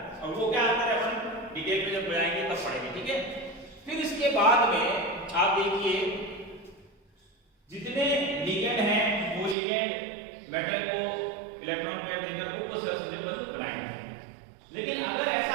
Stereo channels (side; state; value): left; drops out; at 9.6 s